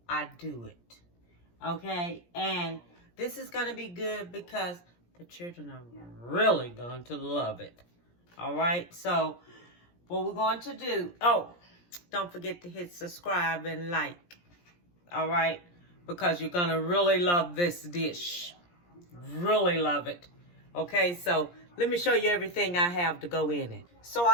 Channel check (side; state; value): right; late; 17 ms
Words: I do it. Okay? And this is going to be good because the children are really going to love it. Alright? So, what we're going to do... Oh, don't forget to hit subscribe and like. Alright? Because you're going to really love this dish. Really love it. Okay, so let me show you everything I have to go in it. So